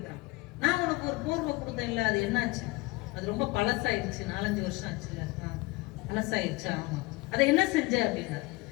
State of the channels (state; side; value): quieter; right; 23.3 dB